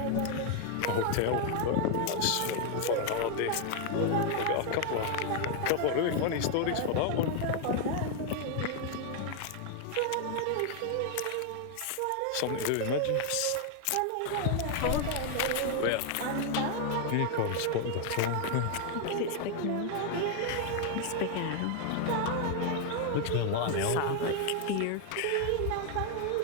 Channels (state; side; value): different; both; correlation 0.00